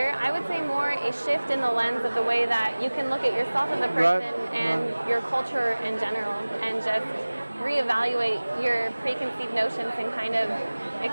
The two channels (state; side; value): inverted; both; correlation -1.00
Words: I would say more a shift in the lens of the way that you can look at yourself as a person and your culture in general and just reevaluate your preconceived notions and kind of